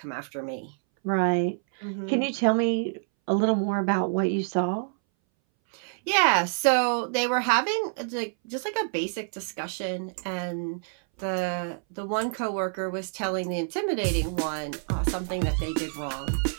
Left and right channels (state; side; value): silent; left; 60 dB below the other